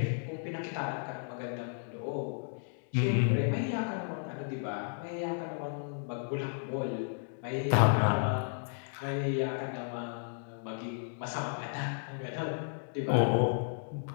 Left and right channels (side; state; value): right; silent; digital silence